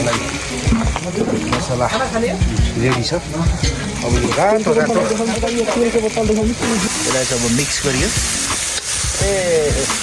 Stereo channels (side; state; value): both; identical; correlation 1.00